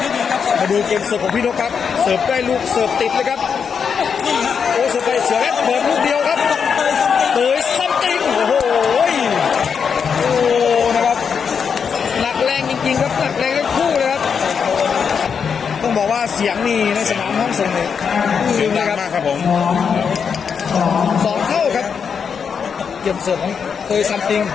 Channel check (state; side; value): quieter; right; 6.5 dB